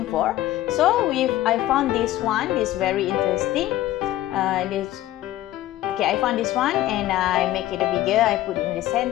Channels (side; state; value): right; quieter; 14.5 dB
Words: for. So I found this one. This very interesting. Okay, I found this one and I make it bigger. I put it in the